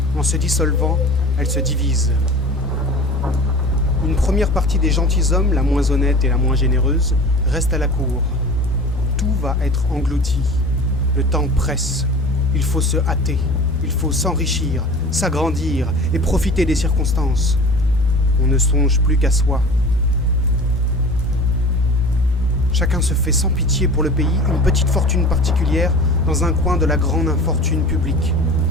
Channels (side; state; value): both; normal; correlation 0.38